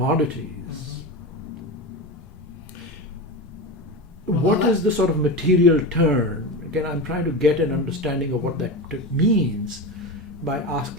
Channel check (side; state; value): both; normal; correlation 0.22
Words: What is the sort of material turn? Again, I'm trying to get an understanding of what that means by